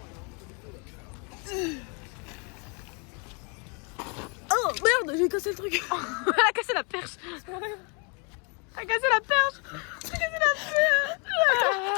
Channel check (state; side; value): quieter; right; 34.7 dB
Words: Oh merde, j'ai cassé le truc. Elle a cassé la perche. Elle a cassé la perche. Elle a cassé la